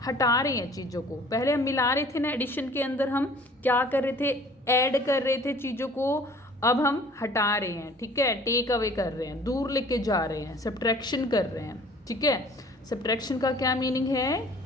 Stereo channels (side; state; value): both; normal; correlation 0.51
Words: हटा रहे हैं चीज़ों को। पहले हम मिला रहे थे ना, एडिशन के अंदर हम क्या कर रहे थे, ऐड कर रहे थे चीज़ों को, अब हम हटा रहे हैं। ठीक है, टेक अवे कर रहे हैं, दूर लेके जा रहे हैं, सब्ट्रैक्शन कर रहे हैं। ठीक है, सब्ट्रैक्शन का क्या मीनिंग है